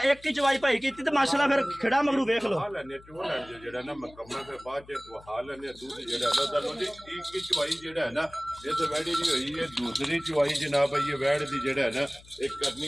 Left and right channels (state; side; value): noise; left; hum, 23 dB below the sound